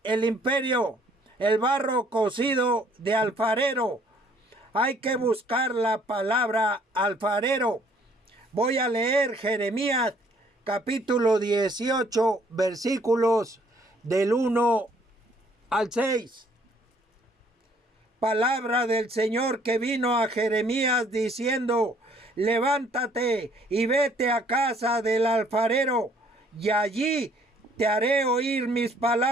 el imperio, el barro cocido de alfarero. Hay que buscar la palabra alfarero. Voy a leer Jeremías capítulo 18, versículos del 1 al 6. Palabra del Señor que vino a Jeremías diciendo: levántate y vete a casa del alfarero, y allí te haré oír mis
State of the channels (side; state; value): both; normal; correlation 0.61